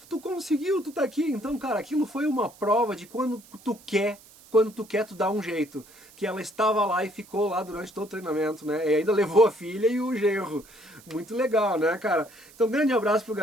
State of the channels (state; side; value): noise; right; hiss, 24 dB below the sound